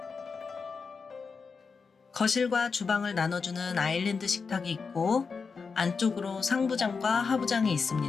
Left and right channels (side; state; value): right; quieter; 5.2 dB